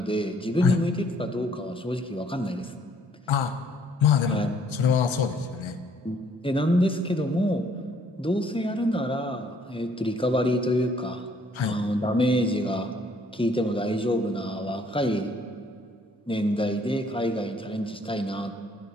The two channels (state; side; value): normal; both; correlation 0.63